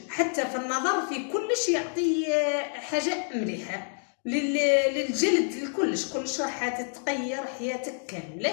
حتى في النظر في كلش يعطي حاجه مليحه للجلد، لكلش راح تتغير حياتك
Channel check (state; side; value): silent; right; 59 dB below the other